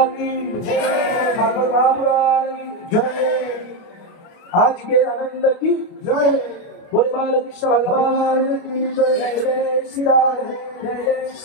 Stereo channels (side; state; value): right; late; 29 ms